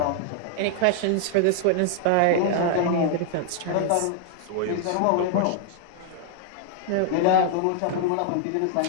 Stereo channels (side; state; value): both; different; correlation 0.00